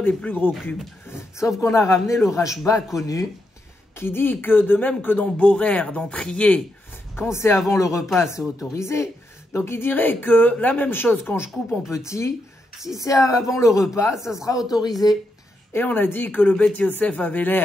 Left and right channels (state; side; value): normal; both; correlation 0.82